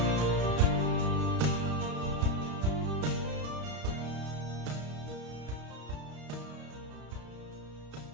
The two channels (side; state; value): left; late; 33 ms